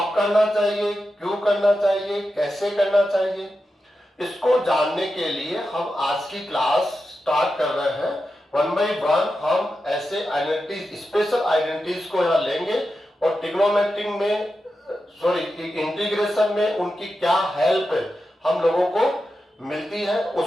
करना चाहिए, क्यों करना चाहिए, कैसे करना चाहिए, इसको जानने के लिए हम आज की क्लास स्टार्ट कर रहे हैं। वन बाई वन हम ऐसे आइडेंटिटीज, स्पेशल आइडेंटिटीज को यहाँ लेंगे और ट्रिग्नोमेट्रिक में इंटीग्रेशन में उनकी क्या हेल्प हम लोगों को मिलती है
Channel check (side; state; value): both; normal; correlation 0.90